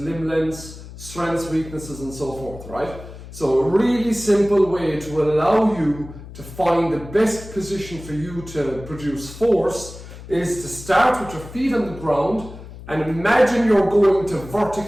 lengths, strengths, weaknesses, and so forth, right? So a really simple way to allow you to find the best position for you to produce force is to start with your feet on the ground and imagine you're going to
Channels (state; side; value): noise; left; hum, 15 dB below the sound